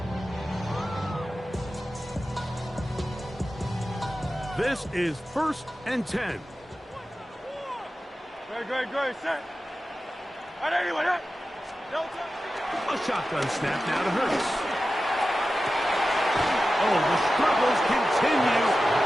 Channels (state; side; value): normal; both; correlation 0.93